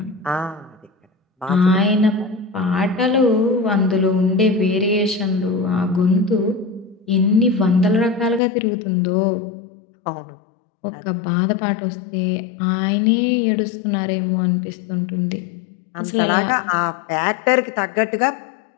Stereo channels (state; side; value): drops out; right; at 8.4 s